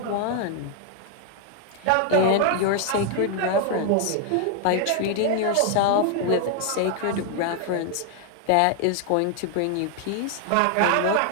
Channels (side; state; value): both; different; correlation 0.00